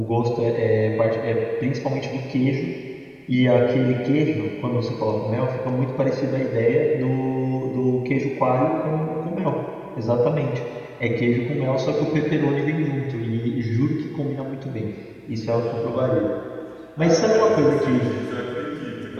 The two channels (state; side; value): identical; both; correlation 1.00